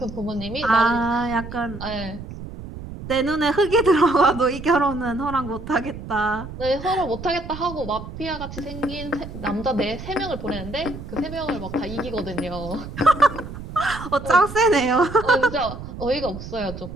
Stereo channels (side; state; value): right; noise; rumble, 11 dB below the sound